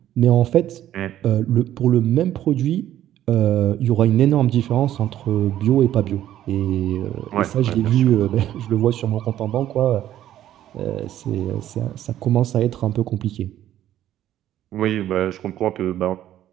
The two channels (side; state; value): left; quieter; 12.2 dB